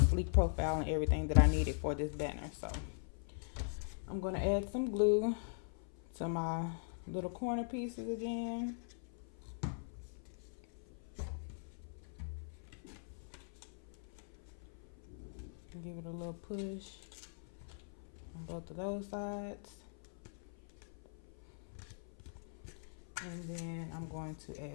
sleek profile and everything that I needed for this banner. So I'm going to add some glue to my little corner pieces again. Give it a little push on both of those sides. And then I'm going to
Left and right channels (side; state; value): right; silent; 50 dB below the other